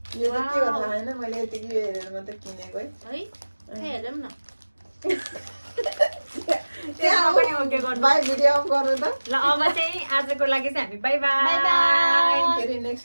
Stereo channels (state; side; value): inverted; both; correlation -1.00